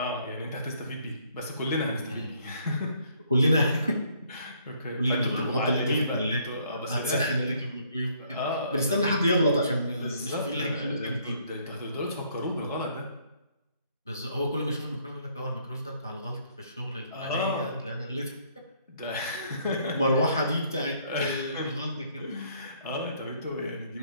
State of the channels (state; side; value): inverted; both; correlation -0.65